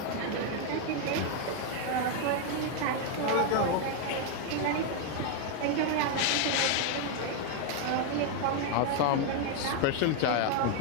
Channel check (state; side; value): different; both; correlation 0.00